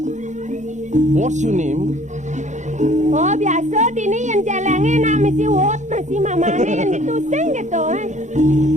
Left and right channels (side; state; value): left; late; 0.35 ms